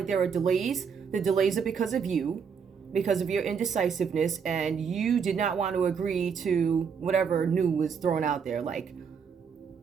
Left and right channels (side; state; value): left; quieter; 6.5 dB